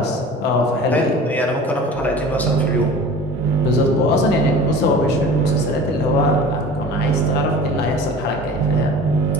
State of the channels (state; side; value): normal; both; correlation 0.40